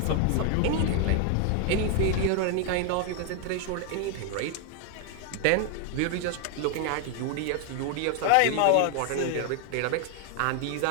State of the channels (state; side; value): different; both; correlation 0.00